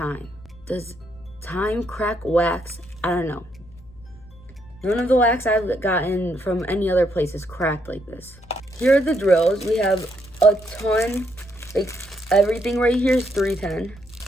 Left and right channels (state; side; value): noise; left; hum, 23 dB below the sound